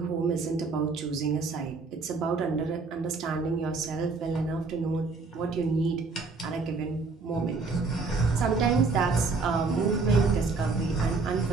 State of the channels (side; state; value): left; quieter; 4.1 dB